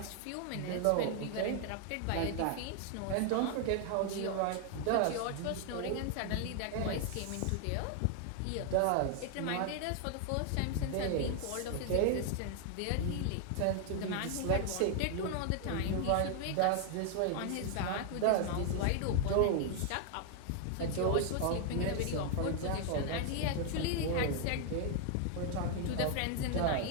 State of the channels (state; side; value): different; both; correlation 0.00